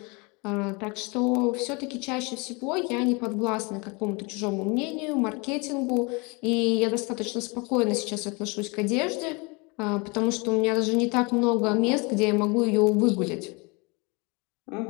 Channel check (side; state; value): right; quieter; 29.0 dB